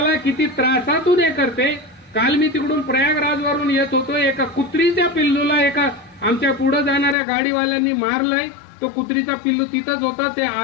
किती त्रासातून हे करते. काल मी तिकडून प्रयागराजवरून येत होतो, एका कुत्रीच्या पिल्लूला एका आमच्या पुढे जाणाऱ्या गाडीवाल्यांनी मारलंय. तो कुत्रीचा पिल्लू तिथंच होता, ते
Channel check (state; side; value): drops out; right; at 7.2 s